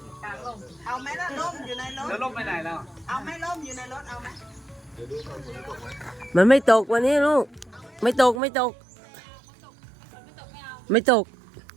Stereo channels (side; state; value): left; drops out; at 8.4 s